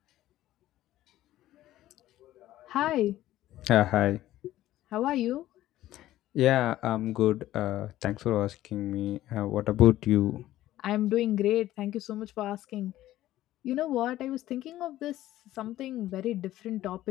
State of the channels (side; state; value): right; quieter; 14.4 dB